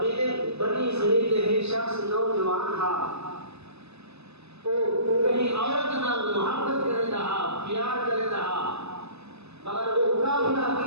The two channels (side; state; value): left; late; 0.79 ms